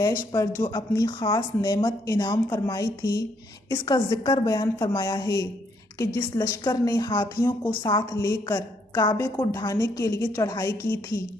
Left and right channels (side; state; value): both; normal; correlation 0.72